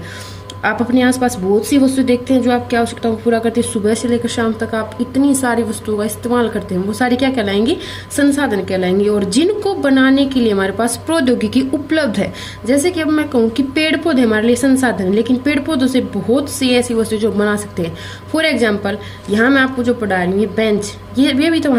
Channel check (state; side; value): identical; both; correlation 1.00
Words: आप अपने आसपास बहुत सी वस्तु देखते हैं जो आपकी आवश्यकताओं को पूरा करती है। सुबह से लेकर शाम तक आप इतनी सारी वस्तुओं का इस्तेमाल करते हैं, वो सारी क्या कहलाएंगी? संसाधन कहलाएंगे। और जिनको बनाने के लिए हमारे पास प्रौद्योगिकी उपलब्ध है, जैसे कि अब मैं कहूँ कि पेड़ पौधे हमारे लिए संसाधन है, लेकिन पेड़ पौधों से बहुत सी ऐसी वस्तु जो बना सकते हैं। फॉर एग्जाम्पल, यहाँ मैं आपको जो पढ़ा रही हूँ, ये बेंच, ये भी तो